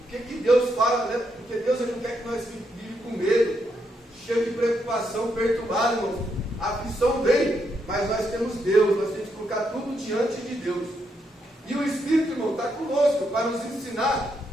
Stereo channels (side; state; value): both; normal; correlation 0.79